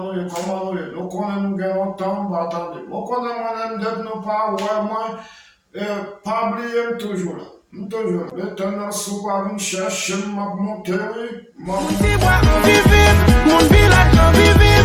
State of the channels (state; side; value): identical; both; correlation 1.00